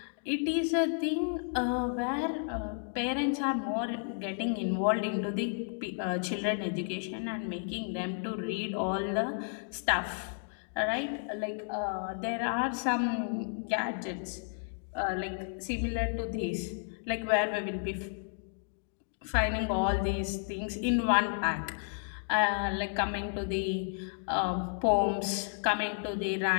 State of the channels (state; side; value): silent; right; digital silence